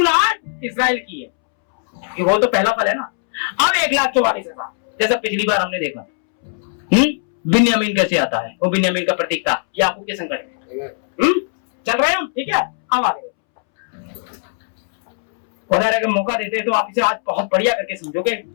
इजराइल की है, कि वो तो पहला फल है ना। अब 1,44,000 जैसा पिछली बार हमने देखा। बिन्यामीन कैसे आता है? वो बिन्यामीन का प्रतीक था, याकूब के संकट में। चल रहे हैं हम, ठीक है? अब आगे खुदा अगर मौका देते हैं तो आप इसे आज बहुत बढ़िया करके समझोगे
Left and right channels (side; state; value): right; silent; 67 dB below the other